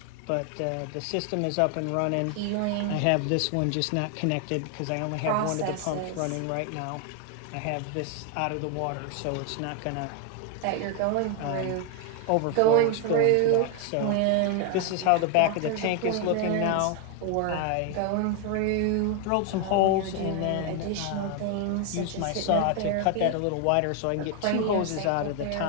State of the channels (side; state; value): both; different; correlation 0.00